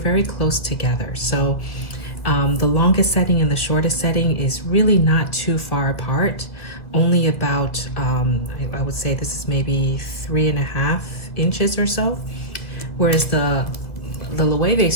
close together. So the longest setting and the shortest setting is really not too far apart, only about, I would say this is maybe 3.5 inches or so. Whereas the Loewe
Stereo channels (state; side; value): late; right; 2.1 ms